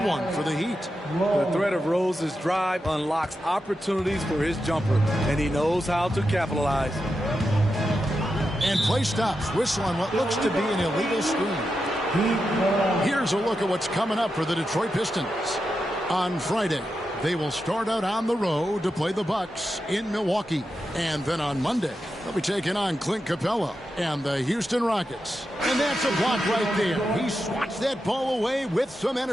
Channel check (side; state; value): both; normal; correlation 0.88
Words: one for the Heat. The threat of Rose's drive unlocks opportunities for his jumper, and he knows how to capitalize. And play stops. Whistle on what looks to be an illegal screen. Here's a look at what's coming up for the Detroit Pistons. On Friday, they will start out on the road to play the Bucks in Milwaukee. And then on Monday, they'll be taking on Clint Capella and the Houston Rockets. And that's a block right there. He swats that ball away with some